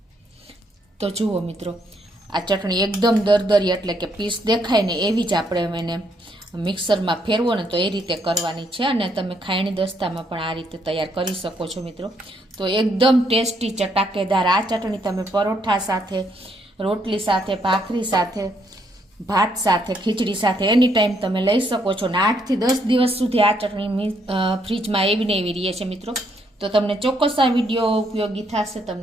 તો જુઓ મિત્રો, આ ચટણી એકદમ દરદરી એટલે કે પીસ દેખાય ને એવી જ આપણે એને મિક્સરમાં ફેરવો ને તો એ રીતે કરવાની છે. અને તમે ખાયણી દસ્તામાં પણ આ રીતે તૈયાર કરી શકો છો મિત્રો. તો એકદમ ટેસ્ટી ચટાકેદાર આ ચટણી તમે પરોઠા સાથે, રોટલી સાથે, ભાખરી સાથે, ભાત સાથે, ખીચડી સાથે એની ટાઈમ તમે લઈ શકો છો. ને 8 થી 10 દિવસ સુધી આ ચટણી ફ્રીજમાં એવી ને એવી રહે છે મિત્રો. તો તમને ચોક્કસ આ વિડીયો ઉપયોગી થશે.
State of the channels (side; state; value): both; normal; correlation 0.72